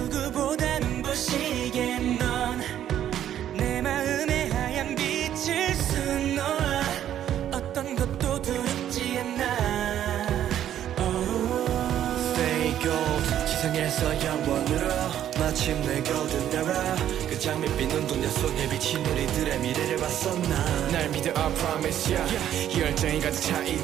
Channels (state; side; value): quieter; left; 10.9 dB